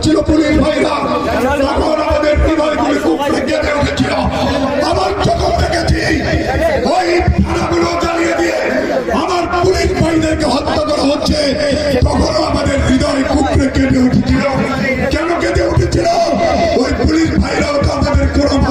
পুলিশ ভাইরা, তখন আমাদের হৃদয়গুলো কুকড়ে কেঁদে উঠেছিল। আমার চোখে দেখেছি ওই থানাগুলো জ্বালিয়ে দিয়ে আমার পুলিশ ভাইদেরকে হত্যা করা হচ্ছে, তখনও আমাদের হৃদয় কুকড়ে কেঁদে উঠেছিল। কেন কেঁদে উঠেছিল? ওই পুলিশ ভাইরাও তো আমাদের কোনো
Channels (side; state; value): both; identical; correlation 1.00